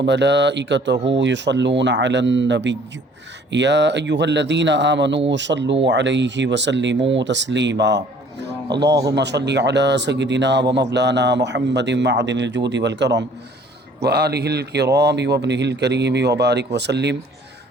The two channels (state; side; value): normal; both; correlation 0.55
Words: یصلون علی النبی یا ایہا الذین آمنوا صلوا علیہ وسلموا تسلیما۔ اللہم صلی علی سیدنا و مولانا محمد معدن الجود والکرم وآلہ الکرام وابنہ الکریم وبارک وسلم